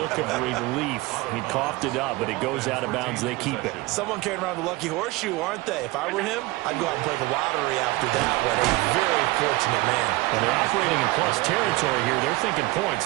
of relief. He coughed it up, but it goes out of bounds. They keep it. Someone carrying around the lucky horseshoe, aren't they? If I were him, I'd go out and play the lottery after that one. A very fortunate man. And they're operating in plus territory here. They're thinking points.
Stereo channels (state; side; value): quieter; left; 20.9 dB